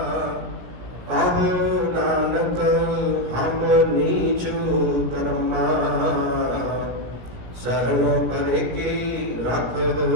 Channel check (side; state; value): left; late; 17 ms